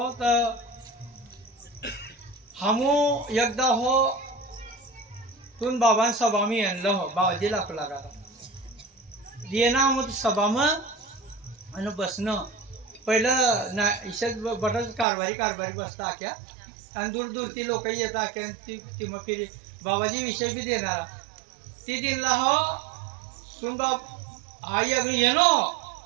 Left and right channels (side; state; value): left; drops out; at 15.1 s